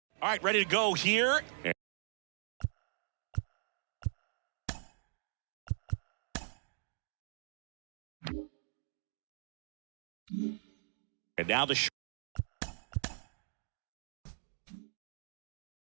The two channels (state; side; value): silent; left; digital silence